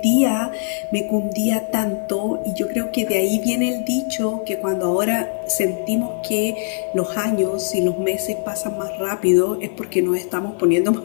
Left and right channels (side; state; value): right; silent; digital silence